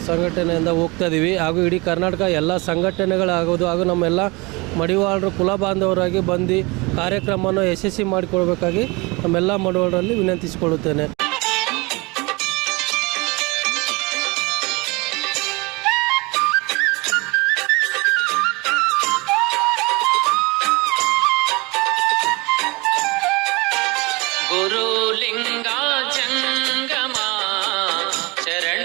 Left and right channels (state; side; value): quieter; left; 25.7 dB